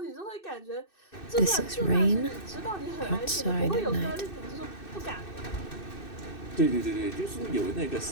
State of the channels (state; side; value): late; right; 2.6 ms